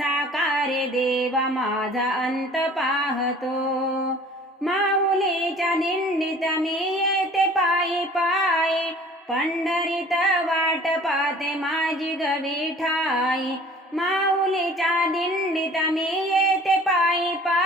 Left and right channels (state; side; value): normal; both; correlation 0.48